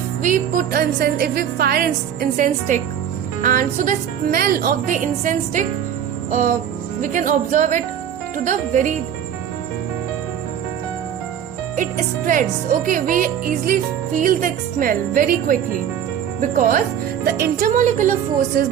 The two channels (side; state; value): left; quieter; 9.2 dB